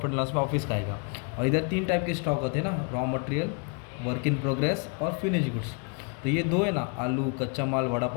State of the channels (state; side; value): quieter; right; 36.0 dB